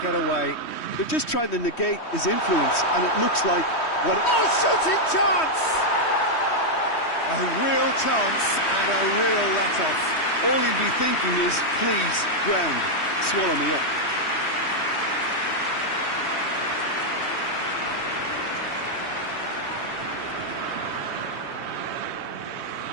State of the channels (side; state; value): right; late; 3.1 ms